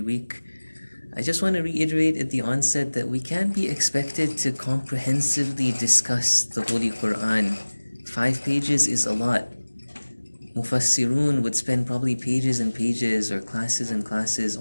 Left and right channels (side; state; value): both; inverted; correlation -1.00